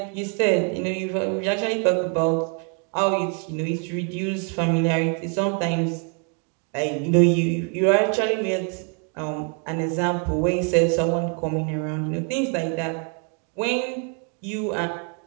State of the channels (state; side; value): quieter; left; 39.6 dB